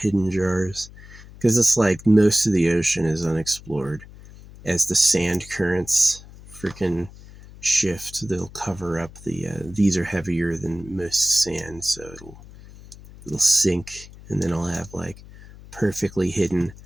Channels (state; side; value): noise; left; hum, 19 dB below the sound